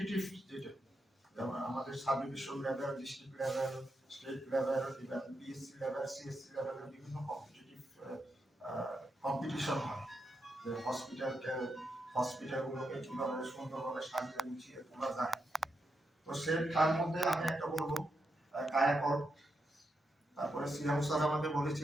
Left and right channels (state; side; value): normal; both; correlation 0.84